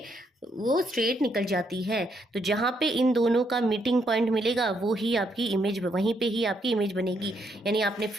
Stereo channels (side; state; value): both; normal; correlation 0.75